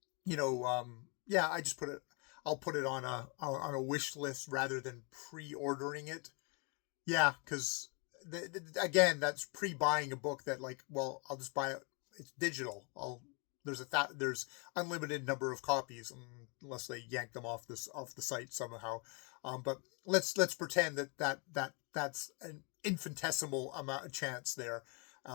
just I'll put it on a wish list rather than pre-ordering it. Yeah, because again, that's pre-buying a book that like, well, I'll just buy it. It's digital. There's unlimited number of copies unless they yank them off the site somehow. But let's pretend that's an infinitesimal amount of chance there.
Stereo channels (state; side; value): quieter; right; 33.6 dB